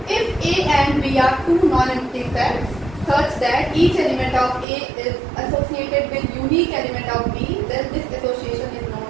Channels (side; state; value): left; drops out; at 4.7 s